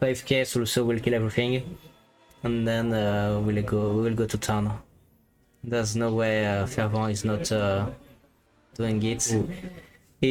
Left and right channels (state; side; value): identical; both; correlation 1.00